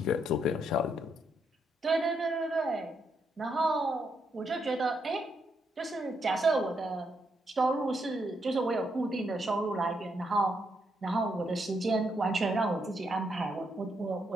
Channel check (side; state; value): both; normal; correlation 0.78